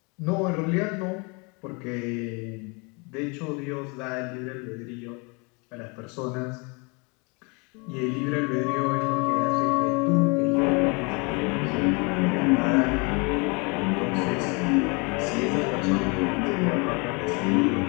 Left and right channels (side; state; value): right; quieter; 31.1 dB